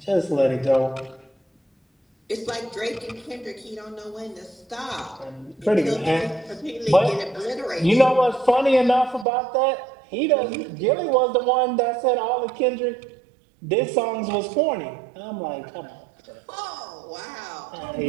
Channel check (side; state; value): left; drops out; at 9.2 s